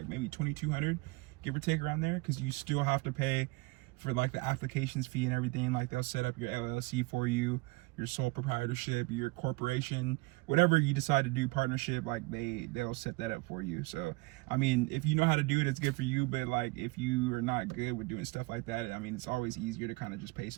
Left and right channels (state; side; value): quieter; left; 24.8 dB